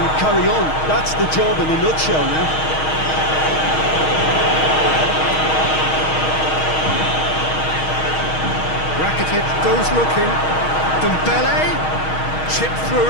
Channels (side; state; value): right; late; 6.4 ms